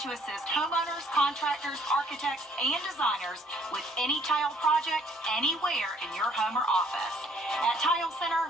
to assist homeowners, contractors, architects, and designers with any tile project anywhere in your home or office. At Tile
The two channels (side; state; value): both; normal; correlation 0.61